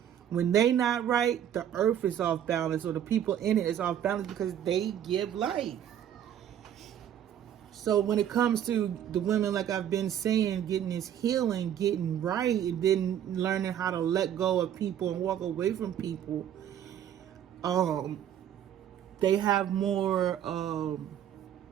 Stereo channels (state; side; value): quieter; left; 10.1 dB